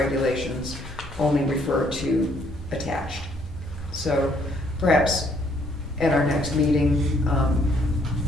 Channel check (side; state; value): both; normal; correlation 0.67